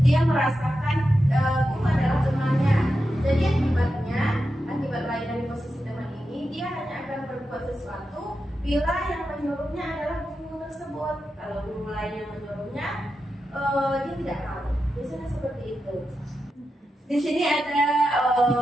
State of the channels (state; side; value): normal; both; correlation 0.89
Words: dia merasakan guru adalah temannya. Jadi akibat lain dari posisi teman ini, dia hanya akan berbuat sesuatu bila yang menyuruhnya adalah guru tersebut. Kalau guru lain yang menyuruhnya, dia tidak tahu. Biasanya seperti itu. Di sini ada